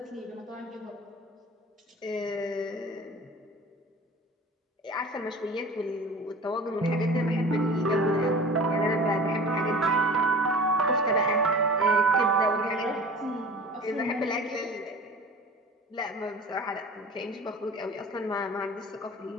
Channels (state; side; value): normal; both; correlation 0.40